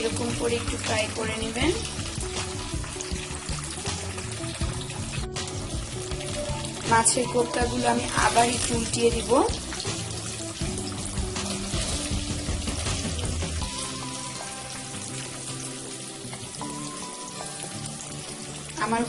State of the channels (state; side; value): identical; both; correlation 1.00